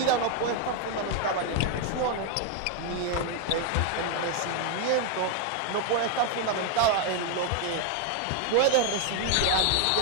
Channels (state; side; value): different; both; correlation 0.01